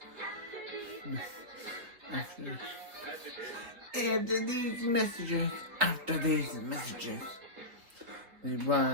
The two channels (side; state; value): left; late; 4.4 ms